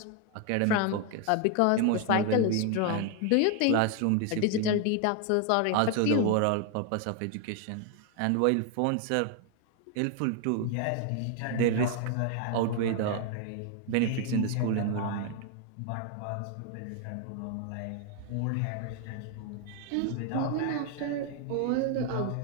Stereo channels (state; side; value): different; both; correlation 0.01